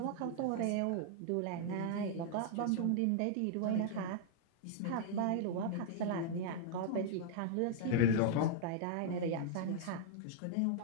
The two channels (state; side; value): different; both; correlation -0.01